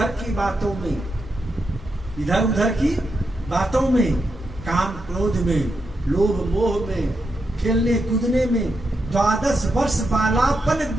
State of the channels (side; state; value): both; normal; correlation 0.84